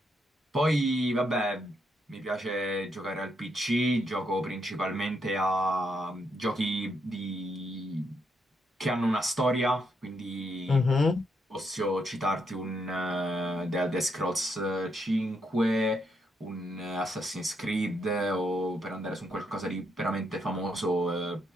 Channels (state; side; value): normal; both; correlation 0.78